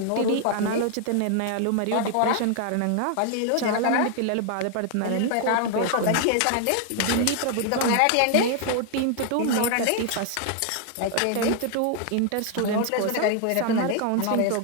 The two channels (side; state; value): both; different; correlation 0.00